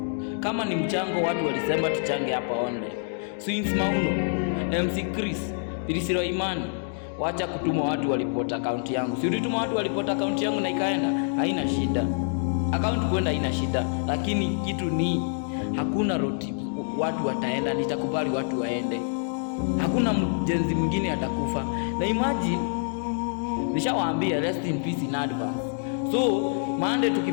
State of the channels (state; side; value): silent; right; digital silence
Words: Kama ni mchango watu walisema tuchange hapa online. Swings Mauno, MC Chris, Pilisiro Imani, wacha kutuma watu walipota account yangu. Si ulituma watu walipota account yangu na ikaenda, haina shida. Account kwenda haina shida, lakini kitu ni hakuna road trip watu wataenda, nitakubali watu waende. Hakuna mjenzi mwingine atakufa. Na imagine nishawaambia rest in peace in advance. So Monday